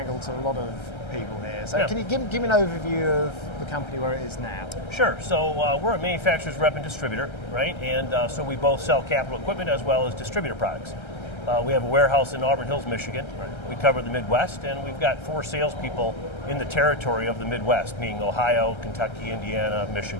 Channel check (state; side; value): late; right; 1.3 ms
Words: to a lot of people here. So can you give me an overview of the company where it is now? Sure. So we're a manufacturer's rep and distributor, right? And so we both sell capital equipment as well as distributor products. We have a warehouse in Auburn Hills, Michigan. We cover the Midwest, and we've got 4 salespeople in the territory of the Midwest, meaning Ohio, Kentucky, Indiana,